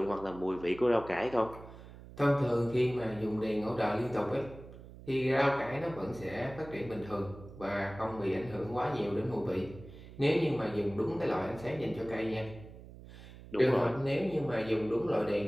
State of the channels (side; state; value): right; noise; hum, 16 dB below the sound